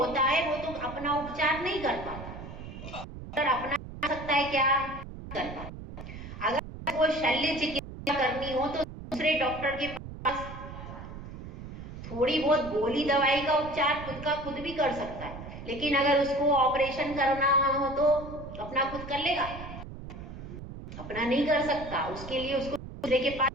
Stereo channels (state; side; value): noise; right; rumble, 11 dB below the sound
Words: है वो तो अपना उपचार नहीं कर पाता, पर अपना सकता है क्या? कर पाता। अगर वो शल्य चिकित्सा करनी हो तो दूसरे दूसरे डॉक्टर के पास। थोड़ी बहुत गोली दवाई का उपचार खुद का खुद भी कर सकता है, लेकिन अगर उसको ऑपरेशन करना हो तो अपना खुद कर लेगा? अपना नहीं कर सकता, उसके लिए उसको दूसरे के पास